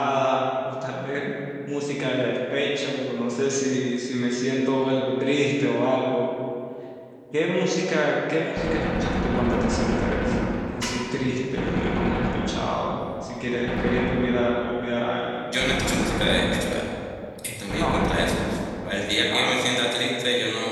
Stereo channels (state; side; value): identical; both; correlation 1.00